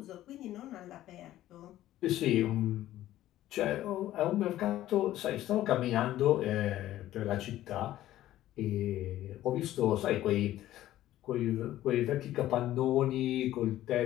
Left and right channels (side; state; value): right; quieter; 14.0 dB